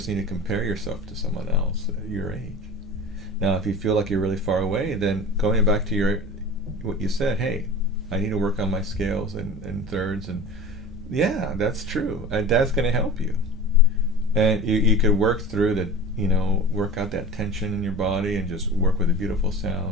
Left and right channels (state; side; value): normal; both; correlation 0.36